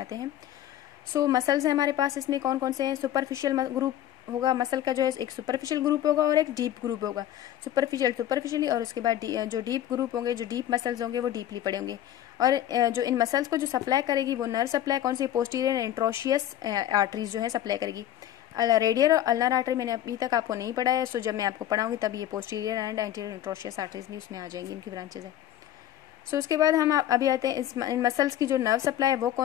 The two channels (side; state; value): right; quieter; 12.0 dB